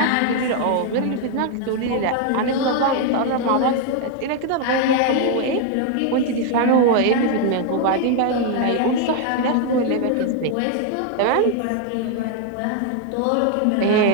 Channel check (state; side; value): different; both; correlation 0.00